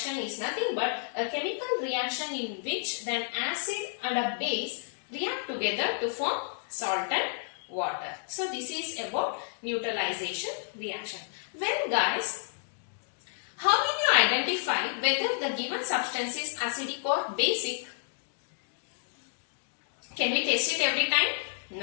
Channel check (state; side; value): silent; right; digital silence